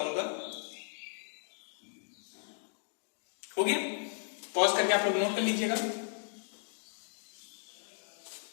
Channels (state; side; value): silent; right; digital silence